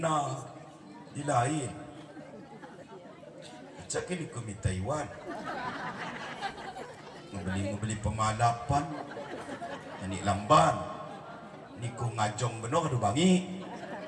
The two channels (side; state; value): both; identical; correlation 1.00